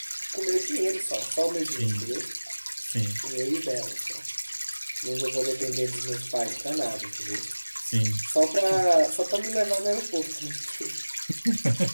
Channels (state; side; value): inverted; both; correlation -1.00